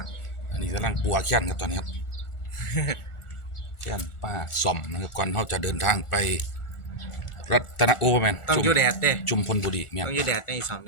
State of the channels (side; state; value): right; late; 1.4 ms